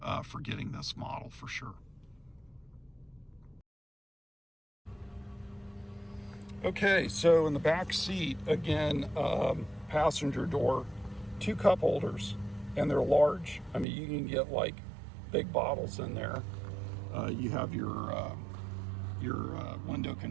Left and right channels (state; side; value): drops out; left; at 13.9 s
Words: for getting this model for sure. Okay, so in the back seat, again, passenger door, 2 cup holders, and they're large. I mean, you can get like big bottles in there. You have your window